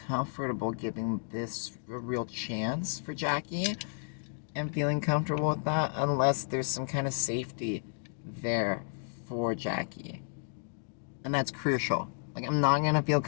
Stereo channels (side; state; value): right; silent; 56 dB below the other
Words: comfortable giving this a real chance for Jackie and feeling comfortable with that unless there's some kind of safety there for Jackie. And that's crucial. Like, I'm not gonna feel